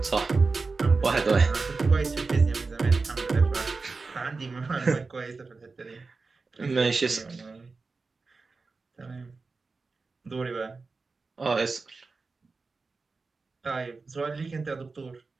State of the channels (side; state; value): left; quieter; 4.1 dB